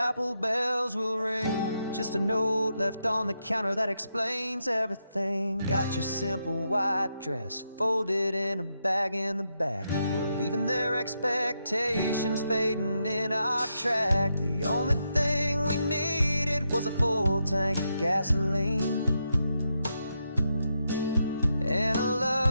bells will ring. Just a note left on the counter that explains everything. Got your simple white dress folded in a bag in the back. We're leaving their expectations fading in our track. The only thing we needed was a full tank of gasoline, and a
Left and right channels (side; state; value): both; inverted; correlation -0.83